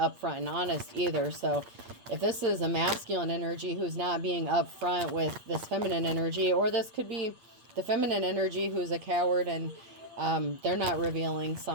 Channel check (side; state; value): left; late; 8.5 ms